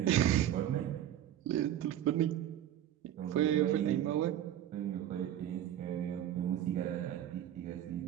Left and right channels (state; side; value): quieter; left; 11.4 dB